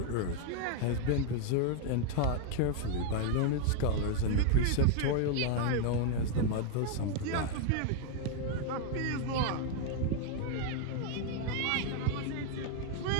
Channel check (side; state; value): both; different; correlation 0.00